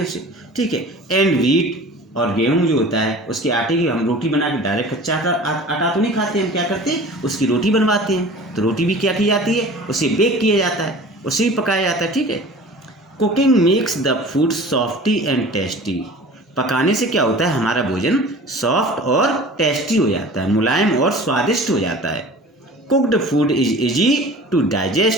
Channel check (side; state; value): both; normal; correlation 0.42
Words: उसे, ठीक है। एंड व्हीट, और गेहूं जो होता है उसके आटे की हम रोटी बना के डायरेक्ट कच्चा आटा तो नहीं खाते, हम क्या करते हैं उसकी रोटी बनवाते हैं। तो रोटी भी क्या की जाती है, उसे बेक किया जाता है, उसे भी पकाया जाता है, ठीक है। Cooking makes the food softy and tasty. पकाने से क्या होता है, हमारा भोजन सॉफ्ट और टेस्टी हो जाता है, मुलायम और स्वादिष्ट हो जाता है। Cooked food is easy to